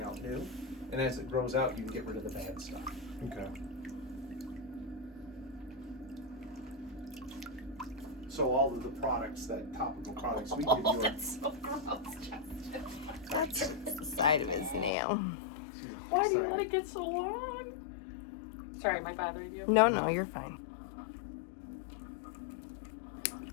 out new. And as it grows out, you can get rid of the bad stuff. Okay. So all of the products, that topical products we give you, are, That's so gross, Justin. That's the side of his nail. Why do you let it get so long? Sorry, am I bothering you? No, you're fine.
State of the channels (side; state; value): right; drops out; at 14.9 s